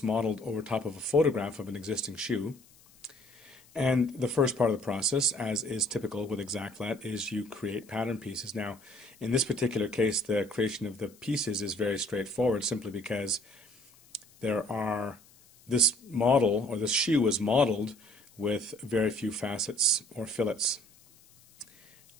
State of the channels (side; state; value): left; noise; hiss, 27 dB below the sound